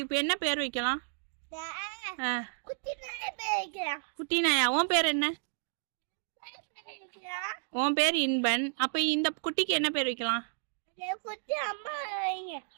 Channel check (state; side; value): silent; left; digital silence